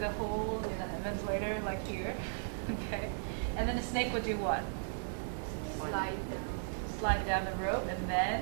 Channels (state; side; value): silent; left; 54 dB below the other